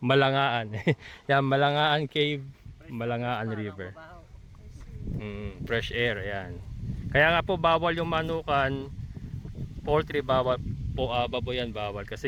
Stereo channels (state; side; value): identical; both; correlation 1.00